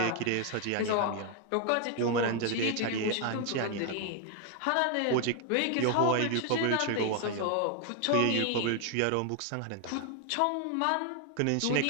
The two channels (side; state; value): both; different; correlation 0.00